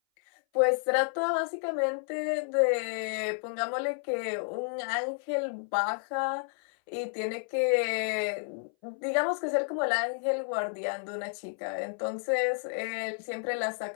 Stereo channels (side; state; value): right; silent; 57 dB below the other